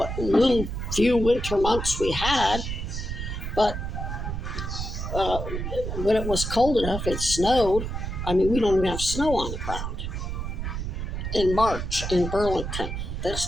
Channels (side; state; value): right; noise; rumble, 4 dB below the sound